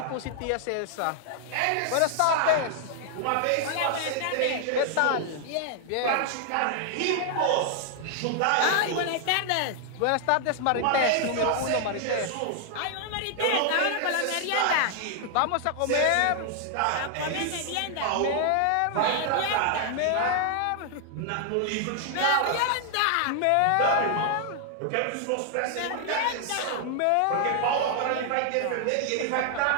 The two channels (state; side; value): different; both; correlation 0.00